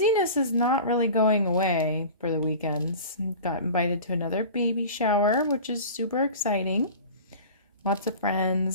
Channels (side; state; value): both; inverted; correlation -0.37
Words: is not really going away for the weekends. Got invited to another baby shower, which is super exciting. Lots of